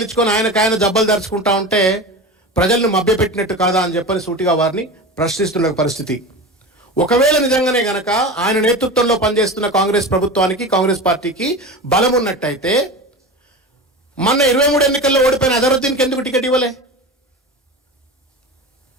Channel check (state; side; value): normal; both; correlation 0.29